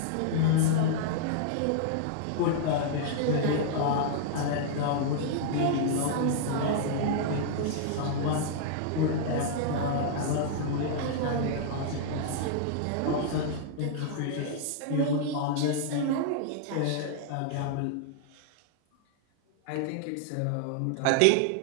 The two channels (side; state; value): both; different; correlation -0.01